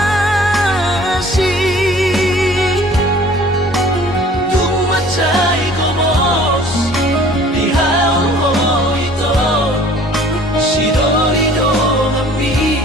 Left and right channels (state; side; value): normal; both; correlation 0.51